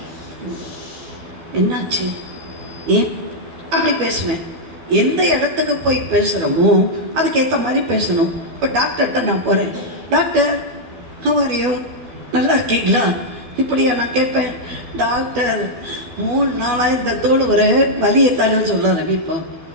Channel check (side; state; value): left; late; 12 ms